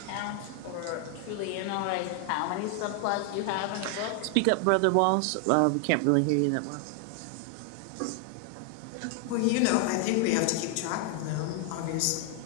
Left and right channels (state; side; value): different; both; correlation 0.00